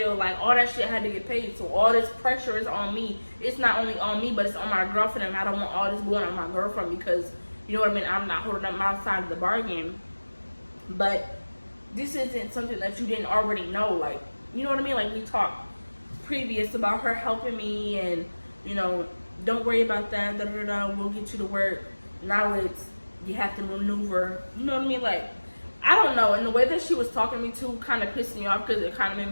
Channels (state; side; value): inverted; both; correlation -1.00